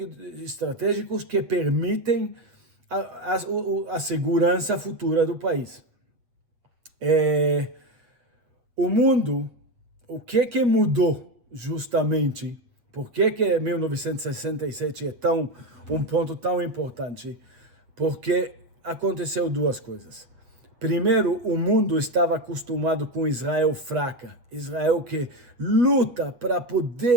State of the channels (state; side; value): late; left; 8.1 ms